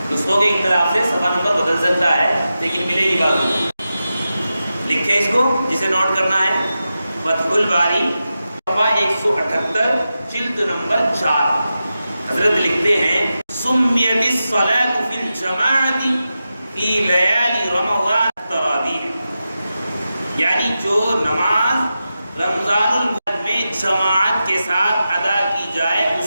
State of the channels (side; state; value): both; inverted; correlation -0.91